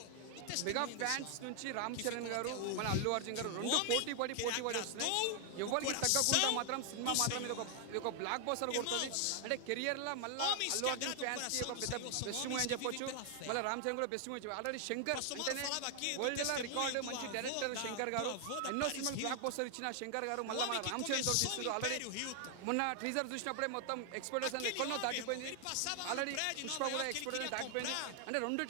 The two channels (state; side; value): different; both; correlation 0.00